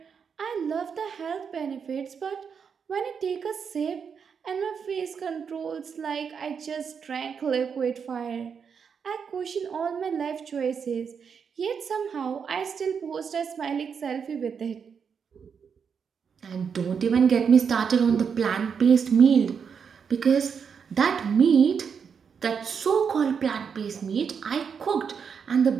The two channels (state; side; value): quieter; left; 6.6 dB